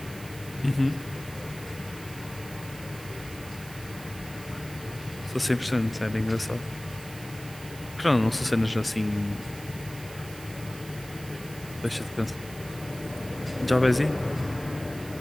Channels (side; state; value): right; noise; hiss, 16 dB below the sound